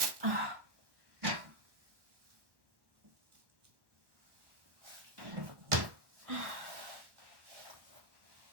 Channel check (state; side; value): late; left; 1.1 ms